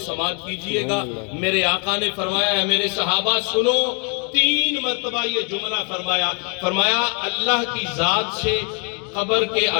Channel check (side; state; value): right; quieter; 36.0 dB